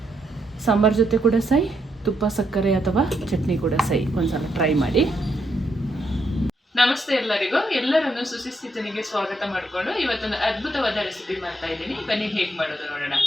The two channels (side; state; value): both; normal; correlation 0.77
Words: ಸಾಂಬಾರು ಜೊತೆ ಕೂಡ ಸೈ, ತುಪ್ಪ ಸಕ್ಕರೆ ಅಥವಾ ಚಟ್ನಿ ಕೂಡ ಸೈ, ಒಂದ್ಸಲ ಟ್ರೈ ಮಾಡಿ. ನಮಸ್ತೆ ಎಲ್ಲರಿಗೂ, ಎಲ್ಲರನ್ನು ಸುಶಿಸ್ತಿತನಿಗೆ ಸ್ವಾಗತ ಮಾಡಿಕೊಂಡು ಇವತ್ತೊಂದು ಅದ್ಭುತವಾದ ರೆಸಿಪಿ ಮಾಡ್ತಾ ಇದ್ದೀನಿ. ಬನ್ನಿ ಹೇಗೆ ಮಾಡೋದು ನೋಡೋಣ.